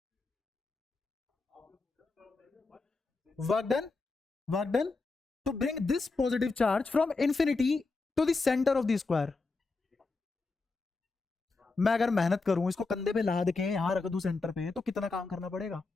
work done to bring this positive charge from infinity to the centre of the square. मैं अगर मेहनत करूं, इसको कंधे पे लाद के यहां रख दूं सेंटर पे, तो कितना काम करना पड़ेगा,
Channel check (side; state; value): right; quieter; 3.8 dB